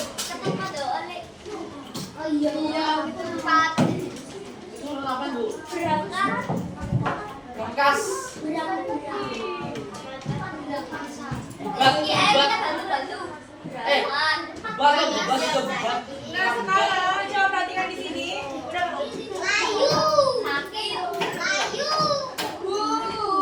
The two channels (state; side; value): identical; both; correlation 1.00